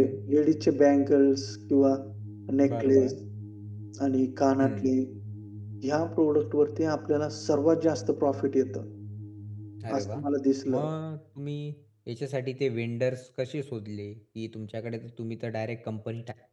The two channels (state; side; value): identical; both; correlation 1.00